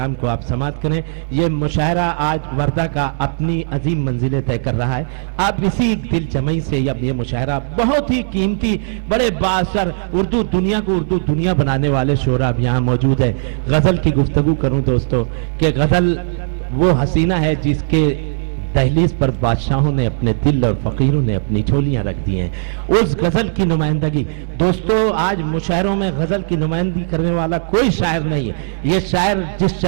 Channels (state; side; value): silent; left; 68 dB below the other